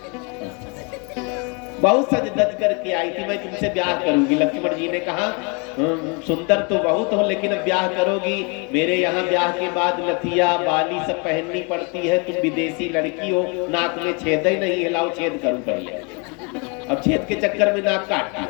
बहुत सज धज करके आई थी, मैं तुमसे ब्याह करूंगी। लक्ष्मण जी ने कहा सुंदर तो बहुत हो लेकिन अब ब्याह करोगी, मेरे यहाँ ब्याह के बाद लथिया बाली सब पहननी पड़ती है, तुम विदेशी लड़की हो, नाक में छेद ही नहीं है, लाओ छेद करूं पहले। अब छेद के चक्कर में नाक काट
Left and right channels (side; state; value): right; quieter; 33.0 dB